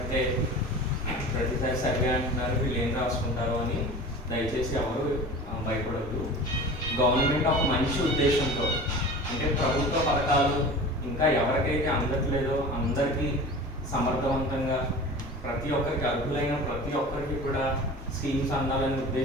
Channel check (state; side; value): normal; both; correlation 0.37